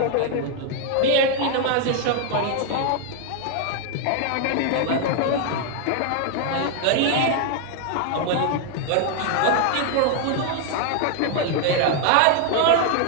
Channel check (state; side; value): different; both; correlation 0.00